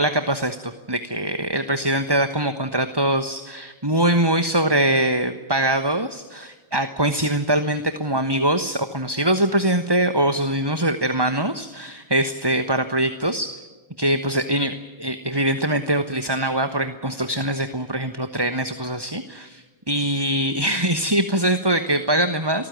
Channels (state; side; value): late; left; 1.2 ms